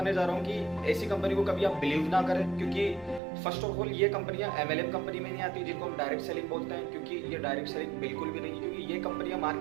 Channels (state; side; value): drops out; left; at 3.2 s